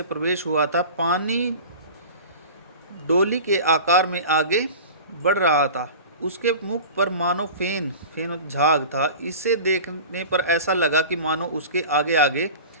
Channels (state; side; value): inverted; both; correlation -0.36